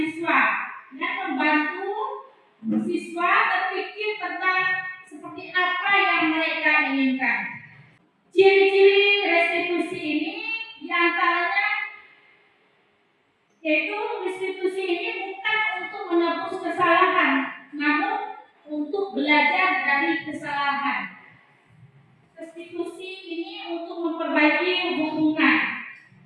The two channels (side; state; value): both; identical; correlation 1.00